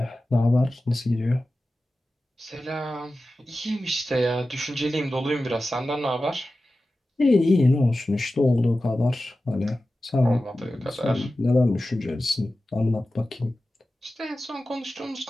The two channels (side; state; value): both; normal; correlation 0.94